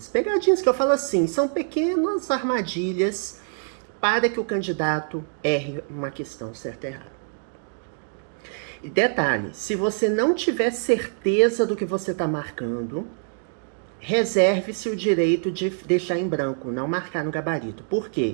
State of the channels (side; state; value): left; silent; digital silence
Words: Pegadinhas que eu falo assim, são pequenas armadilhas para que o candidato erre uma questão certa e errada. E detalhe, se você não tiver certeza do que você está marcando, reserve-se o direito de deixar em branco, não marcar no gabarito. Por